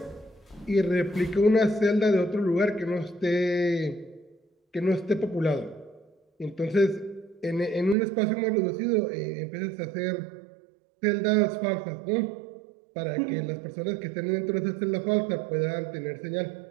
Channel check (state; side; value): drops out; left; at 8.0 s